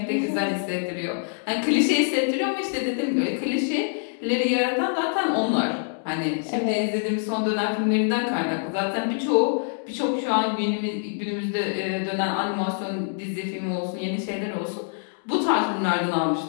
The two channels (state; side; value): silent; right; digital silence